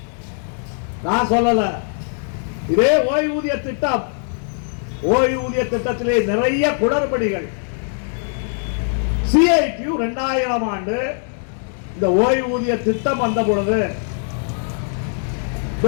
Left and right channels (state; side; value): silent; right; 65 dB below the other